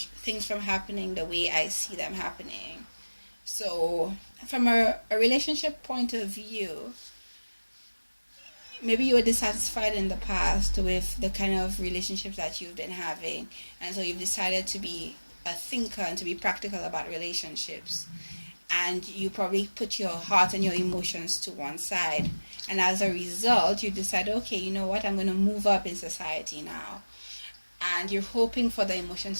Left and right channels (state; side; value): inverted; both; correlation -1.00